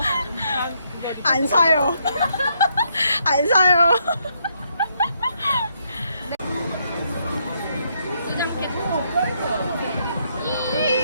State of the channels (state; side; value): inverted; both; correlation -0.75